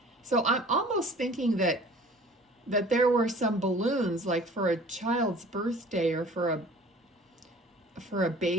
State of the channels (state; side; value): normal; both; correlation 0.47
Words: So I'm almost thinking that there were some balloons, like for a child's birthday, or for a